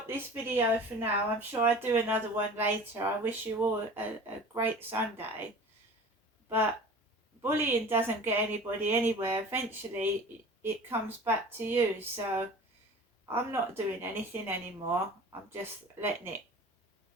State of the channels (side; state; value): both; normal; correlation 0.40